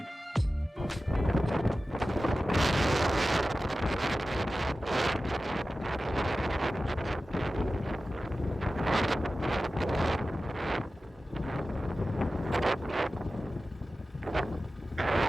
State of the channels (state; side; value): normal; both; correlation 0.95